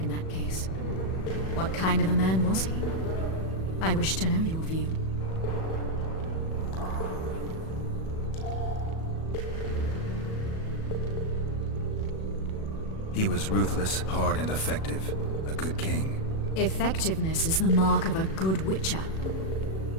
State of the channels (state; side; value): late; right; 37 ms